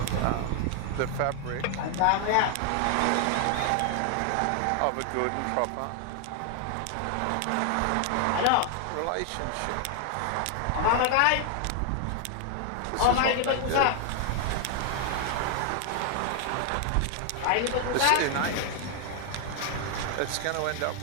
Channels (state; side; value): different; both; correlation 0.00